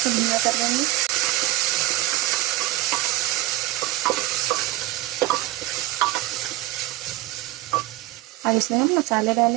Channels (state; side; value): quieter; left; 17.7 dB